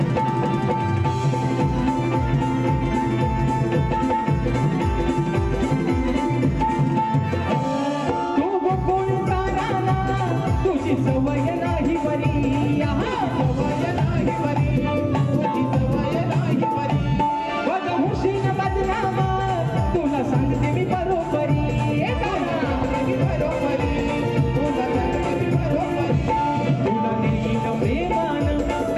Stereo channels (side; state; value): both; identical; correlation 1.00